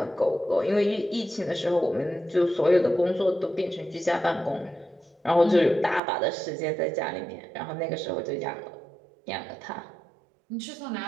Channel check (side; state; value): left; drops out; at 6.0 s